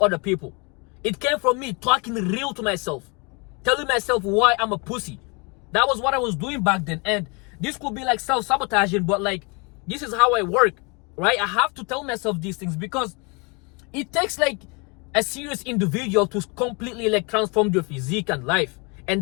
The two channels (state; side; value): quieter; right; 30.6 dB